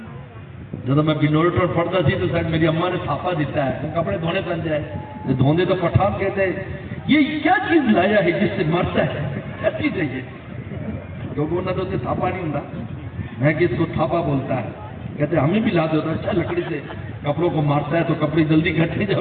جب میں بنولٹر پڑھتا سی تو شاید میری اماں نے تھاپا دیتا ہے، کپڑے دھونے پہن جائے، دھوندے تو پٹھان کہتے ہیں۔ یہ کیا چیز لایا ہے جس سے مرتا ہے؟ کیا چیز ہے یہ؟ لوگوں نے تو اسے تھاپا نہیں ہوتا، میں کہ اس کو تھاپا بولتا ہے، کہتے ہمیں بھی لا دیتا، اچھا لکڑی سے کپڑوں کو مارتا ہے تو کپڑے جلدی کھٹتے ہیں،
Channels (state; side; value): identical; both; correlation 1.00